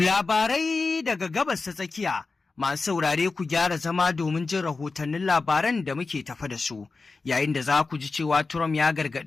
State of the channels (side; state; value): right; quieter; 4.0 dB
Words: daga gabas ta tsakiya, masu saurare ku gyara zama domin jin rahotannin labaran da muke tafa da su, yayin da za ku ji cewa Trump ya